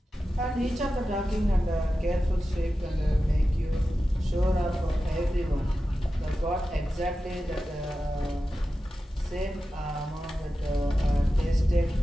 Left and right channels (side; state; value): both; normal; correlation 0.93